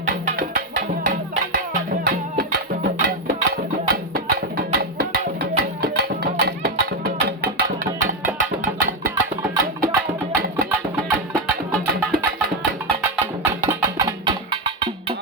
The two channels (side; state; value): both; normal; correlation 0.08